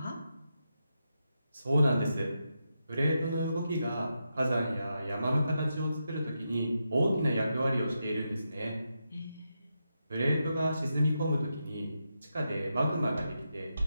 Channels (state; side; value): inverted; both; correlation -0.85